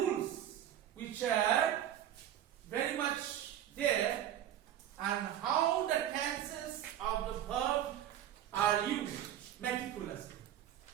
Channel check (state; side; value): quieter; left; 11.1 dB